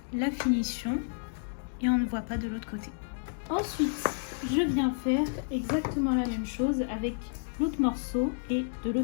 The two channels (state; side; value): silent; right; digital silence